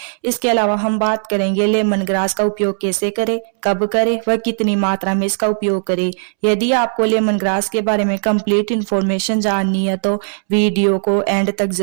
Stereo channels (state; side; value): silent; left; 67 dB below the other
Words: इसके अलावा हम बात करेंगे लेमन ग्रास का उपयोग कैसे करें, कब करें, वह कितनी मात्रा में इसका उपयोग करें। यदि आपको लेमन ग्रास के बारे में कंप्लीट इन्फॉर्मेशन जाननी है तो वीडियो को एंड तक